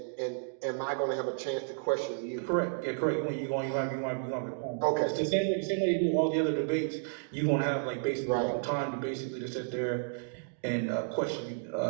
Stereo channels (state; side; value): silent; left; digital silence